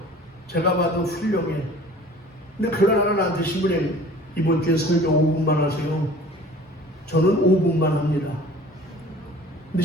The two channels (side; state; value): both; normal; correlation 0.47